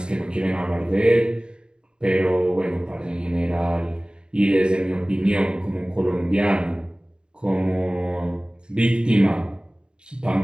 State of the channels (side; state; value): left; late; 0.050 ms